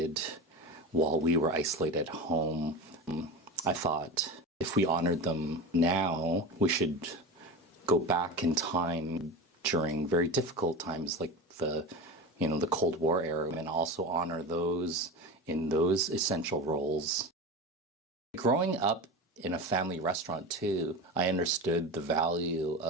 while we were isolated at home. I thought if we honored them now, we should go back in time during very difficult times like the Cold War era, and also honor those in those essential roles. Growing up in a family restaurant too, I understood the value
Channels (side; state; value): both; normal; correlation 0.26